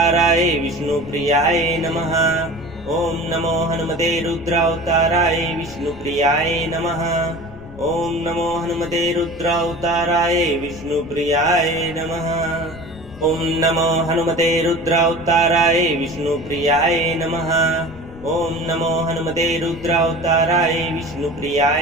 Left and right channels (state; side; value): noise; left; rumble, 17 dB below the sound